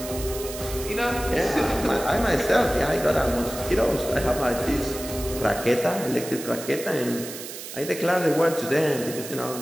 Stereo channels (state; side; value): noise; right; hiss, 10 dB below the sound